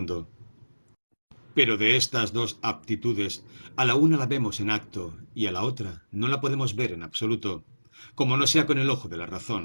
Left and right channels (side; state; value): both; inverted; correlation -1.00